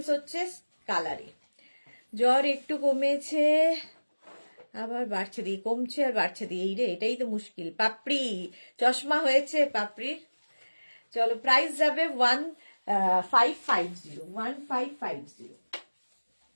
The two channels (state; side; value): inverted; both; correlation -1.00